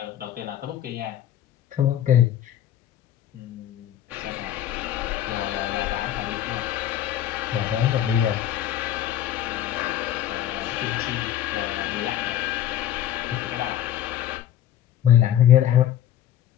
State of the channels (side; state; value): right; quieter; 11.4 dB